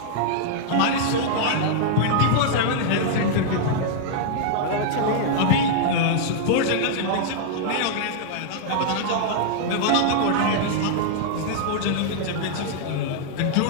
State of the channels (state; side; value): different; both; correlation -0.01